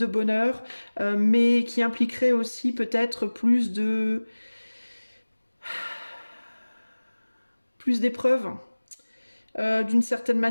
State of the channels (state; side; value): inverted; both; correlation -1.00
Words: bonheur, mais qui impliquerait aussi peut-être plus d'épreuves. D'une certaine